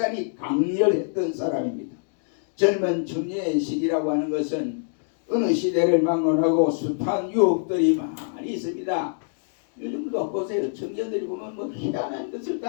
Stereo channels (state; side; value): silent; right; digital silence